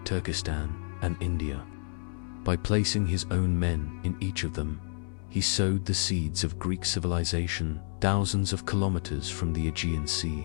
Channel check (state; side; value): silent; right; 58 dB below the other